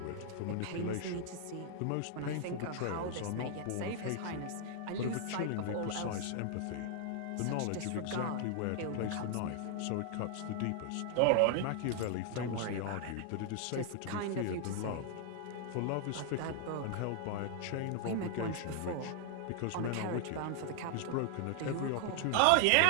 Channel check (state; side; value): different; both; correlation 0.00